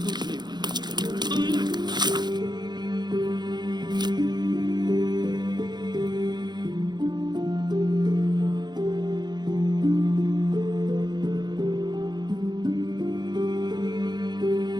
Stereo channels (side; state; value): left; late; 0.21 ms